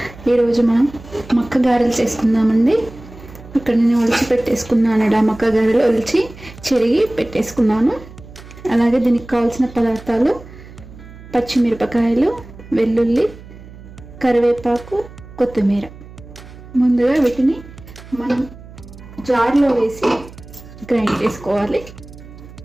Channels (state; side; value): noise; right; hum, 18 dB below the sound